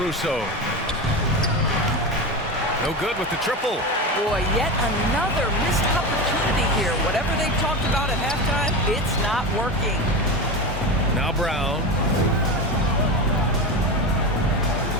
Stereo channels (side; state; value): both; normal; correlation 0.22